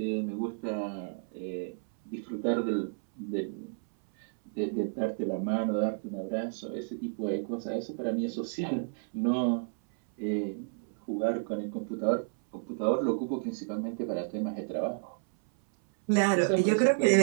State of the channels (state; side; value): silent; left; 57 dB below the other